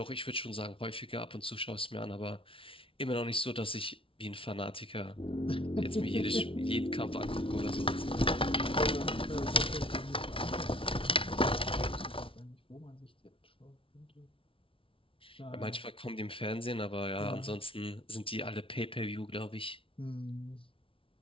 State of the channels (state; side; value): late; right; 0.26 ms